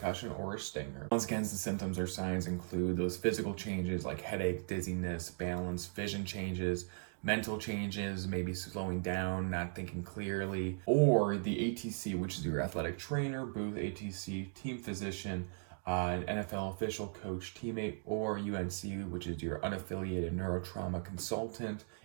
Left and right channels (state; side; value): silent; left; digital silence